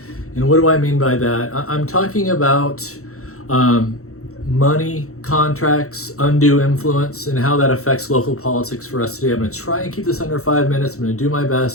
And what do I mean by that? I'm talking about money, contracts, undue influence, and how that affects local politics for us today. I'm going to try and keep this under 5 minutes. I'm going to do my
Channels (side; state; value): right; late; 0.64 ms